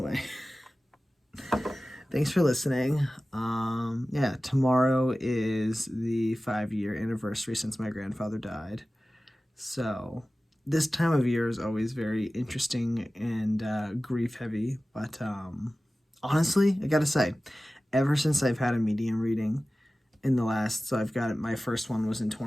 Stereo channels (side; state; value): both; normal; correlation 0.96